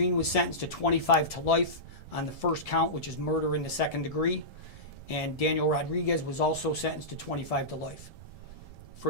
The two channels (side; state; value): right; late; 1.7 ms